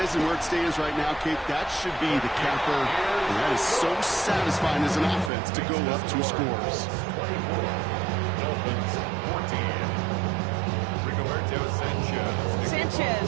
is and where it stands right now, Kate, that should be the capper. And that is so satisfying as an offense to go up 2 scores. Dolphins 14. Rigoberto Sanchez.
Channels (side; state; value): left; drops out; at 5.3 s